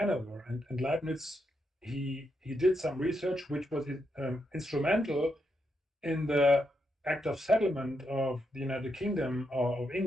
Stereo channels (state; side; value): normal; both; correlation 0.82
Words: and Leibniz he did some research which was instrumental in the Act of Settlement of the United Kingdom or of